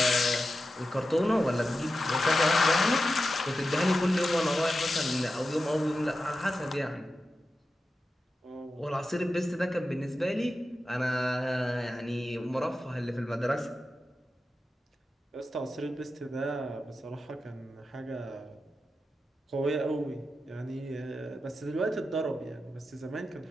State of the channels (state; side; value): normal; both; correlation 0.91